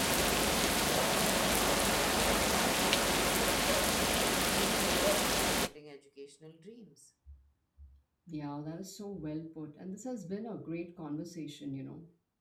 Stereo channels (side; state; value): both; identical; correlation 1.00